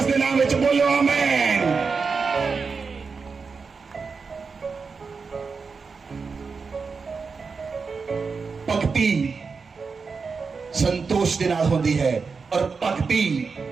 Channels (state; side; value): quieter; left; 5.0 dB